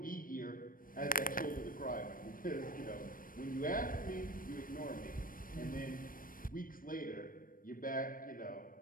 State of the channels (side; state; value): right; late; 0.40 ms